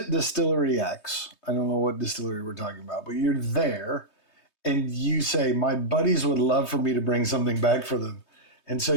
Distillery X. I don't know what distillery we're talking about, but you're there and you say, my buddies would love for me to bring something back for them. And so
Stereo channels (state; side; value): late; right; 3.2 ms